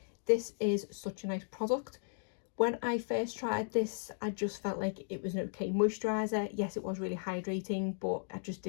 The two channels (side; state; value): right; silent; digital silence